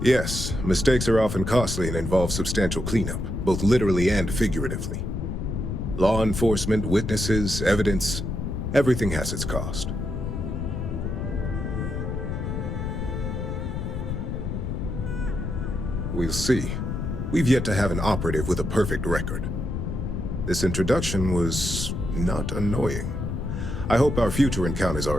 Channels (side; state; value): left; noise; rumble, 3 dB below the sound